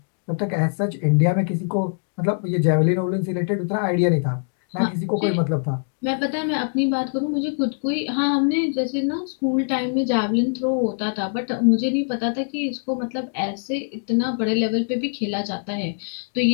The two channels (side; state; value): right; silent; digital silence